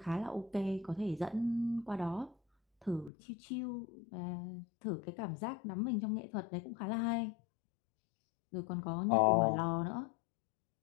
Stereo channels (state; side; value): drops out; right; at 3.1 s